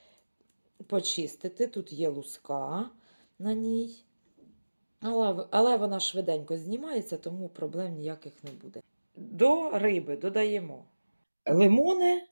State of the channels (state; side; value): inverted; both; correlation -1.00